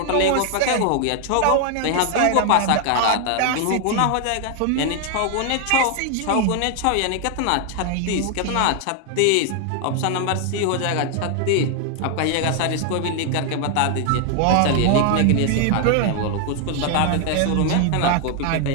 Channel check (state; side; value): different; both; correlation 0.00